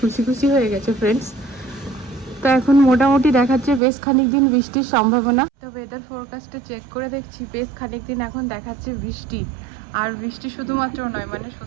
খুশি হয়ে গেছে ফ্রেন্ডস। তো এখন মোটামুটি দেখাচ্ছে বেশ খানিক দিন বৃষ্টির সম্ভাবনা। তো ওয়েদার ফোরকাস্টে চেক করে দেখছি বেশ খানিক দিন এখন দেখাচ্ছে বৃষ্টি। আর বৃষ্টি শুধুমাত্র নয়, মানে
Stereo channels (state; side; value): drops out; left; at 3.8 s